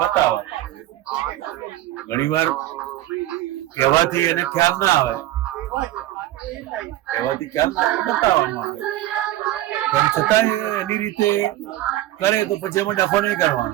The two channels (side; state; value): left; quieter; 15.0 dB